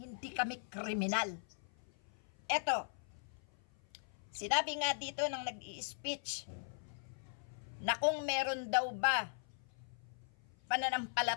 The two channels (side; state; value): right; silent; 51 dB below the other